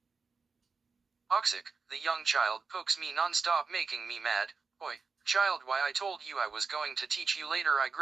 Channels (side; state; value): left; quieter; 4.8 dB